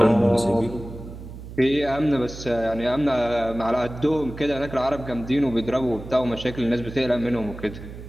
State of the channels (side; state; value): right; noise; hum, 13 dB below the sound